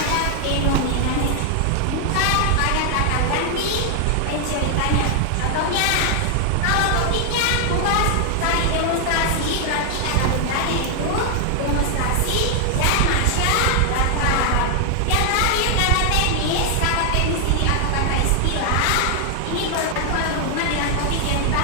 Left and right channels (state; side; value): different; both; correlation 0.00